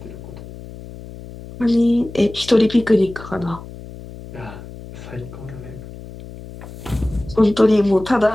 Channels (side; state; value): left; noise; hum, 15 dB below the sound